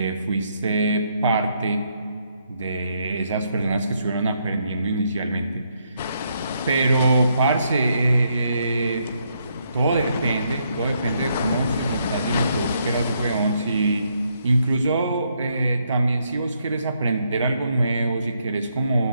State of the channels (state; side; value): inverted; both; correlation -0.75